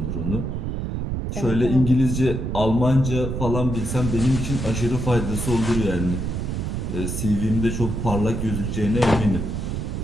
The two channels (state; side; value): noise; right; rumble, 3 dB below the sound